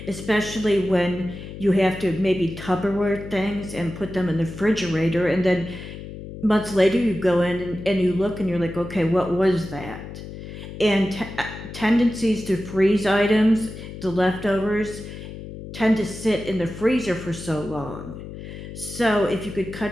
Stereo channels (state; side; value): noise; left; hum, 11 dB below the sound